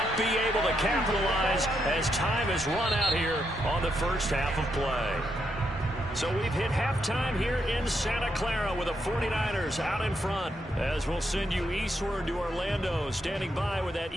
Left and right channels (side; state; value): both; normal; correlation 0.80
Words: be able to capitalize as time has run out here on the first half of play. So we've hit halftime here in Santa Clara with the 49ers out in front. As we'll send you eastward to Orlando. Standing by with that